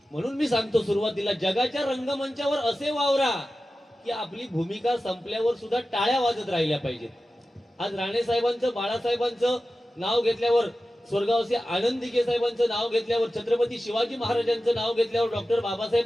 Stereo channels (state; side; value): normal; both; correlation 0.94